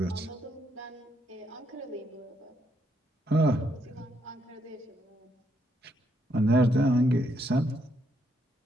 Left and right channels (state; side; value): normal; both; correlation 0.75